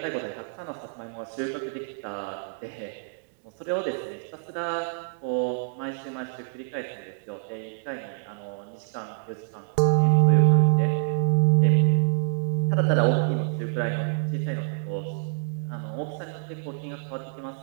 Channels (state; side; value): silent; left; digital silence